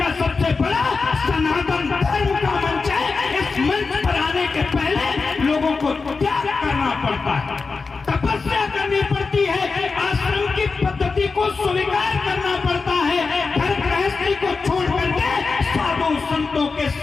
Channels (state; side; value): quieter; right; 4.4 dB